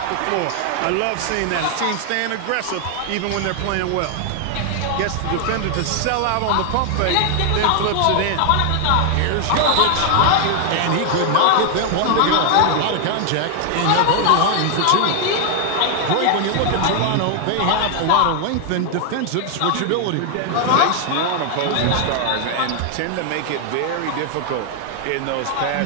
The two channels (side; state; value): both; different; correlation 0.00